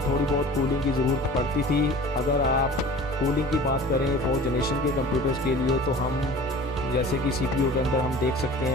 थोड़ी बहुत कूलिंग की ज़रूरत पड़ती थी। अगर आप कूलिंग की बात करें 4th जनरेशन के कंप्यूटर्स के लिए तो हम जैसे कि CPU के अंदर हम देख सकते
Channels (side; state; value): both; normal; correlation 0.42